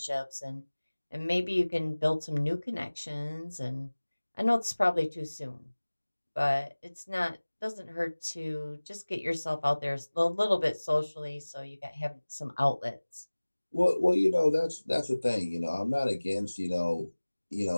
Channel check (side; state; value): both; inverted; correlation -1.00